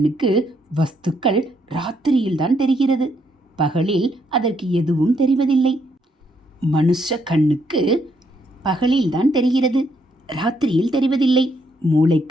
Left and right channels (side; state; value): both; normal; correlation 0.73